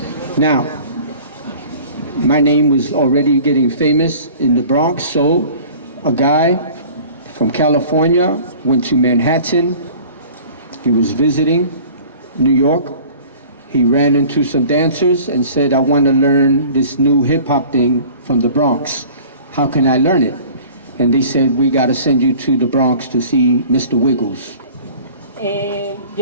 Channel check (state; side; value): inverted; both; correlation -0.46